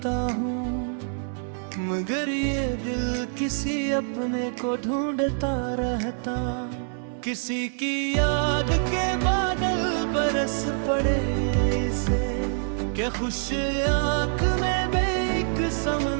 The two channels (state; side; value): silent; left; 61 dB below the other